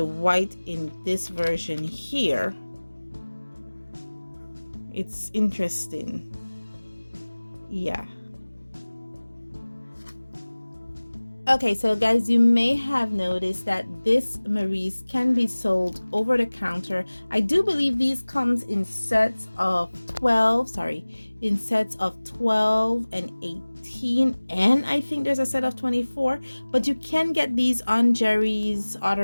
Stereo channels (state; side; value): inverted; both; correlation -1.00